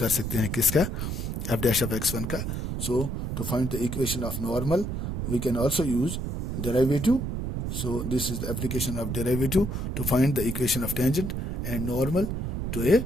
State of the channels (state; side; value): noise; right; rumble, 3 dB below the sound